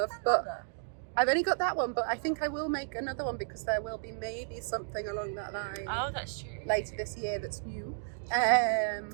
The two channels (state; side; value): silent; left; digital silence